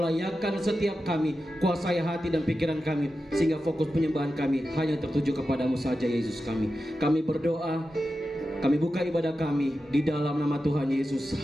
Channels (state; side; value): normal; both; correlation 0.91